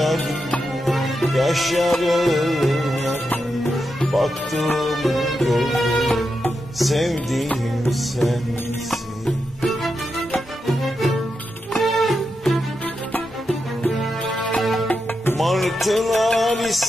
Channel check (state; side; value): normal; both; correlation 0.87